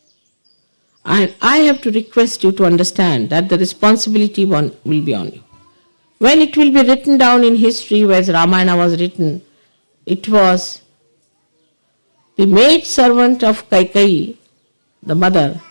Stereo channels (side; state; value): both; inverted; correlation -1.00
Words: And I have to request you to understand that the responsibility will be on you. When it will be written down in history, as Ramayana was written, it was the maid servant of Kaikeyi, the mother,